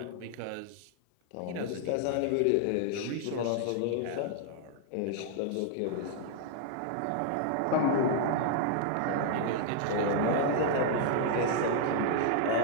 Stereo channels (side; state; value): both; different; correlation -0.01